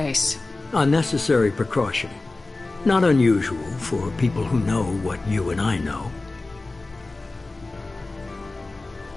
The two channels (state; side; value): quieter; right; 3.2 dB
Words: Unnecessary precaution. Not unusual for people who know what you and I know.